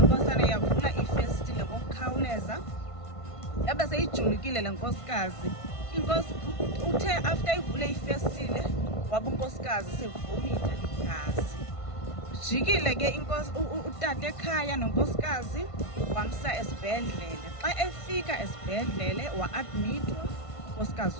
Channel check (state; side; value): late; right; 1.5 ms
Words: yavula ifestile ngokukhawuleza, yabe seyijulukile le nkosikazi. Inkosi uthe after ivule ifestile waba unkosikazi sevumitha igazi. Jikile ke inkosi utata ekhaya nonkosikazi wamsa esibhedlele. Xa efika esibhedlele wa-admitwa